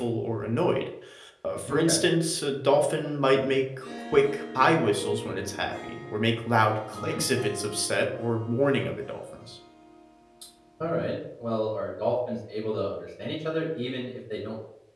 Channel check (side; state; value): both; identical; correlation 1.00